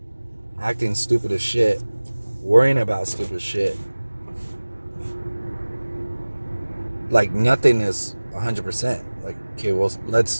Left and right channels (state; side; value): inverted; both; correlation -1.00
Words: acting stupid as shit, worrying about stupid shit, like nothing is 100%. Like, okay, well,